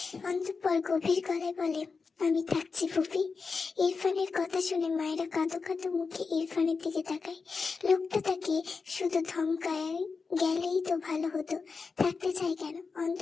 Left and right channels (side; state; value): right; quieter; 4.8 dB